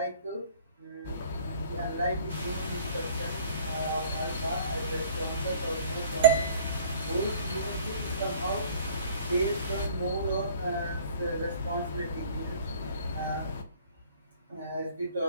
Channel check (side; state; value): both; inverted; correlation -0.53